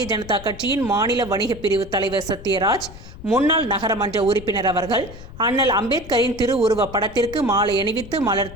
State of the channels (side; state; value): left; noise; rumble, 15 dB below the sound